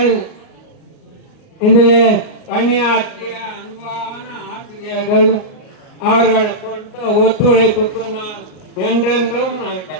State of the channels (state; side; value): late; right; 38 ms